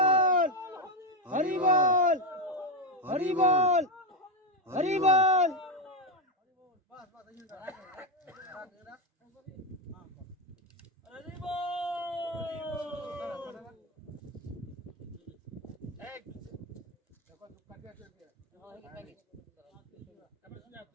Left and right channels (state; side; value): normal; both; correlation 0.08